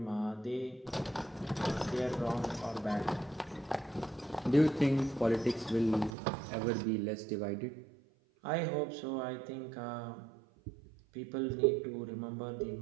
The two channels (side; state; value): left; drops out; at 6.2 s